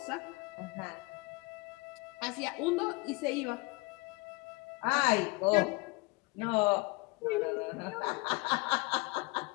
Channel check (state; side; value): quieter; right; 26.3 dB